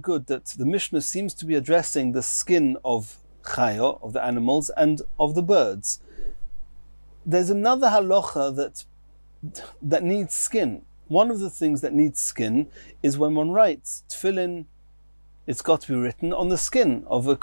that the Mishnah seems to be addressing the skin of chaya, of the animals, and of the birds. There's another halacha that needs skin. One of the things that needs skin is when one writes tefillin, it's got to be written on the skin of a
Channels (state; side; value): inverted; both; correlation -1.00